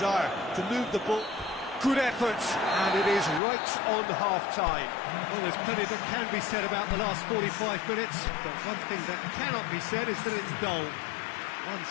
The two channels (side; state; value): right; drops out; at 3.4 s